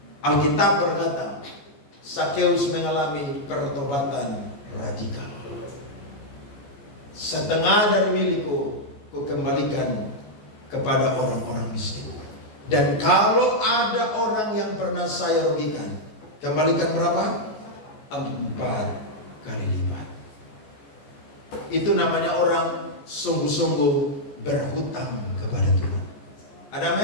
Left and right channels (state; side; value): late; right; 14 ms